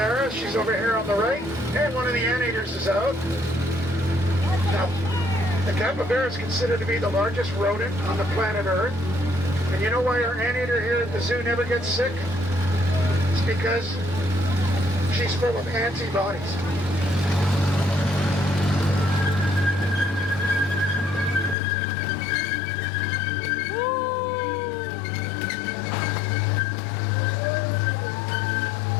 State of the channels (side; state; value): right; drops out; at 21.6 s